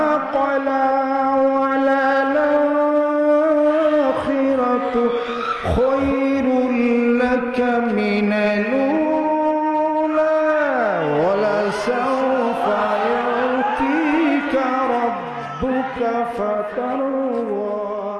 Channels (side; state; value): both; identical; correlation 1.00